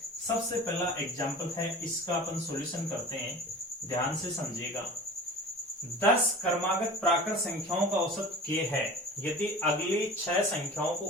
सबसे पहला एग्जाम्पल है, इसका अपन सॉल्यूशन करते हैं, ध्यान से समझिएगा। 10 क्रमागत प्राकृत संख्याओं का औसत k है। यदि अगली 6 संख्याओं को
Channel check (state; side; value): normal; both; correlation 0.39